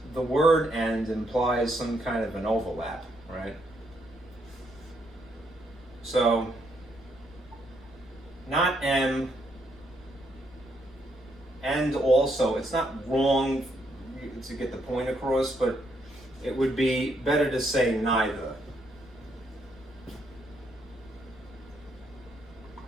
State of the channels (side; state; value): left; noise; rumble, 22 dB below the sound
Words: the word and implies some kind of an overlap, right? So, not M, and also, it's not wrong to get the point across, but it would be better to say neither.